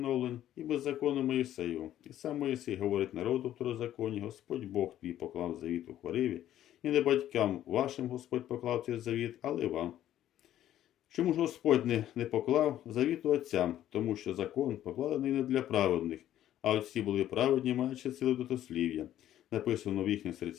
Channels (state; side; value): quieter; right; 12.2 dB